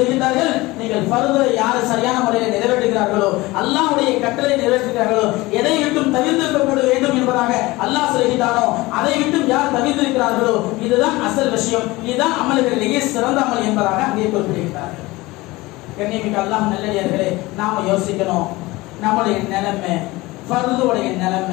நீங்கள் ஃபர்தை யார் சரியான முறையில் நிறைவேற்றுகிறார்களோ, அல்லாஹ்வுடைய கட்டளை நிறைவேற்றுகிறார்களோ, எதை விட்டும் தவிர்த்திருக்க வேண்டும் என்பதாக அல்லாஹ் சொல்கின்றானோ அதை விட்டும் யார் தவிர்த்திருக்கிறார்களோ இதுதான் அசல் விஷயம், இதுதான் அமல்களிலேயே சிறந்த அமல் என்பதாக அங்கே குறிப்பிடுகிறார்கள். கண்ணியமிக்க அல்லாஹ் நல்லடியார்களே, நாம யோசிக்கணும், நம்முடைய நிலைமை, ஃபர்துடைய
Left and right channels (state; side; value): quieter; right; 20.7 dB